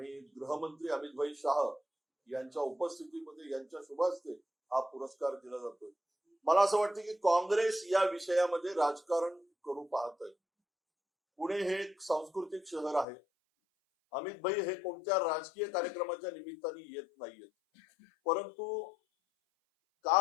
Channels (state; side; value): drops out; right; at 13.1 s